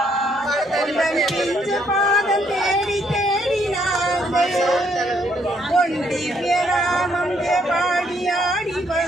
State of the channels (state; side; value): normal; both; correlation 0.71